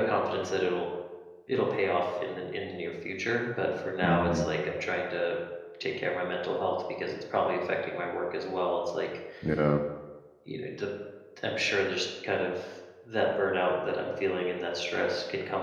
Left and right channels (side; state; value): both; identical; correlation 1.00